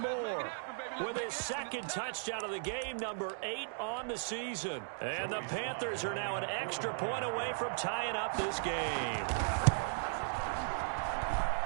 with his 2nd touchdown of the game, number 8 on the season. And the Panthers are now an extra point away from tying up this game.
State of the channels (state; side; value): silent; left; digital silence